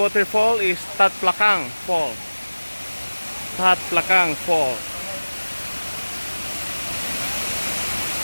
is Tat Plakang Fall. Tat Plakang Fall.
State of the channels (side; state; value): both; inverted; correlation -1.00